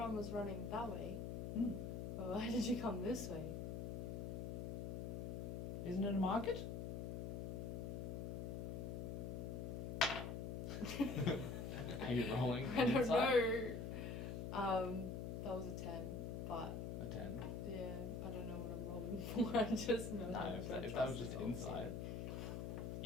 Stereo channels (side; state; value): left; noise; hum, 3 dB below the sound